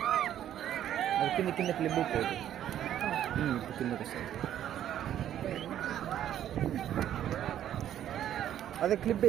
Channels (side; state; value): left; quieter; 11.1 dB